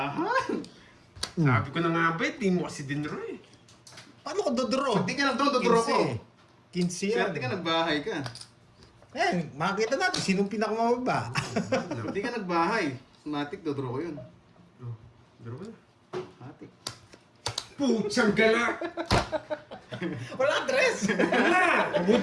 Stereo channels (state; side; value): identical; both; correlation 1.00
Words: Sabi ko na nga ba, di mo kasi dinro eh. Paano ko dodoro? Hindi ka nag-down, dodoro ko. 15 yan. Swerte ka, nagbahay ka. Ayan, makikita natin sinong pinakamababa. Hindi ka nagbahay. Matic, dodraw ko yun. Oh, draw na. Matic. Putsang gala! Wala dress! Wala!